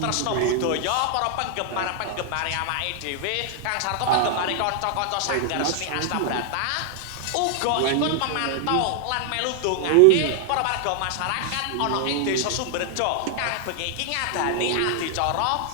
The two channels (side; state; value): both; different; correlation 0.00